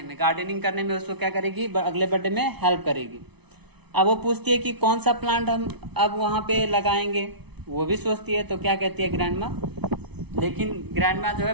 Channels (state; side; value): late; left; 0.99 ms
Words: करने में उसको क्या करेगी, अगले बर्थडे में हेल्प करेगी। अब वो पूछती है कि कौन सा प्लांट हम अब वहां पे लगाएंगे, वो भी सोचती है। तो क्या कहती है ग्रैंडमा, लेकिन ग्रैंडमा जो है